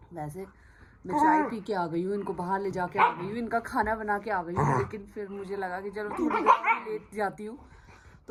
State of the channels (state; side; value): identical; both; correlation 1.00